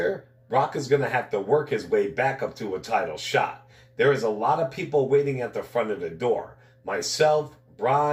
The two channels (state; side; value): identical; both; correlation 1.00